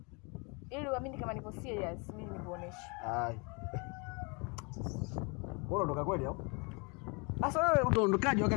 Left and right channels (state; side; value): quieter; right; 31.3 dB